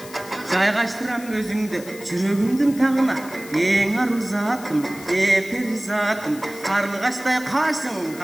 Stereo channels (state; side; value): noise; left; hiss, 17 dB below the sound